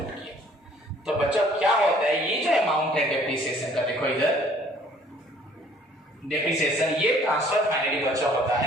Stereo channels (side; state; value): both; normal; correlation 0.57